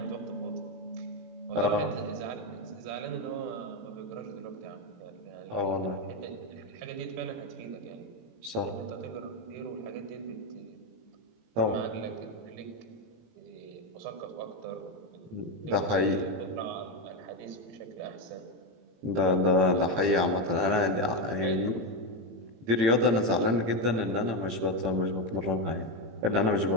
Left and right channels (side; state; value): left; late; 18 ms